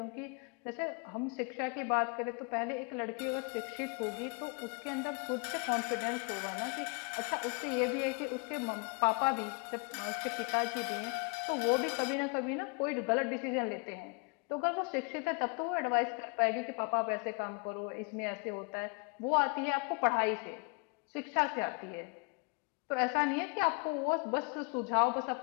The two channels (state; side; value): quieter; right; 34.0 dB